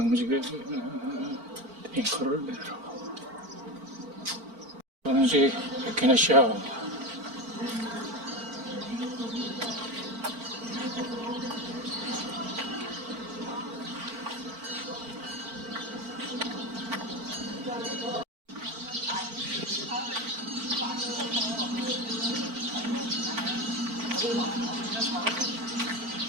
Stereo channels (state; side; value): late; left; 4.4 ms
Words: 탱커를 내려. 방직 에케네시아.